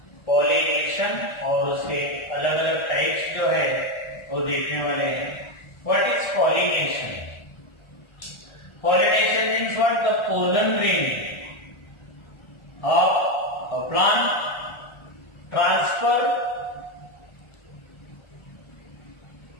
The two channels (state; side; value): late; right; 1.4 ms